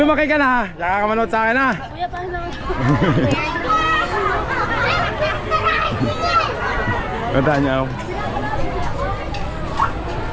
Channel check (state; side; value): identical; both; correlation 1.00